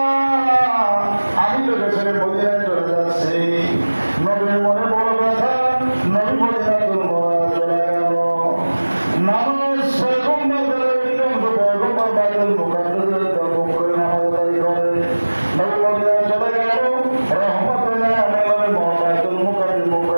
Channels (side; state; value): both; inverted; correlation -1.00